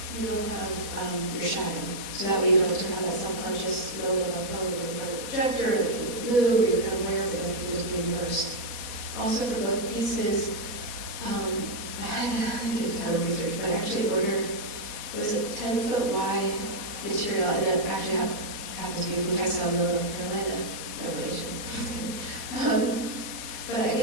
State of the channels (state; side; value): late; left; 4.2 ms